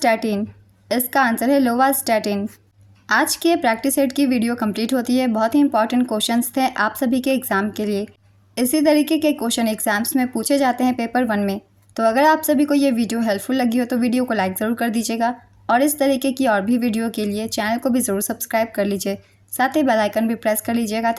इसका आंसर है लोवास्टैटिन। आज की प्रैक्टिस सेट की वीडियो कंप्लीट होती है। बहुत ही इंपॉर्टेंट क्वेश्चंस थे आप सभी के एग्ज़ाम के लिए। इसी तरीके के क्वेश्चन एग्जाम्स में पूछे जाते हैं पेपर 1 में। तो अगर आप सभी को ये वीडियो हेल्पफुल लगी हो तो वीडियो को लाइक ज़रूर कर दीजिएगा और इस तरीके की और भी वीडियो के लिए चैनल को भी ज़रूर सब्सक्राइब कर लीजिए साथ ही बेल आइकन भी प्रेस कर लीजिएगा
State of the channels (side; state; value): both; identical; correlation 1.00